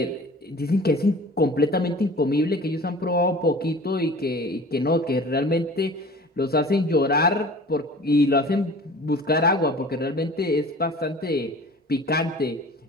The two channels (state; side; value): normal; both; correlation 0.43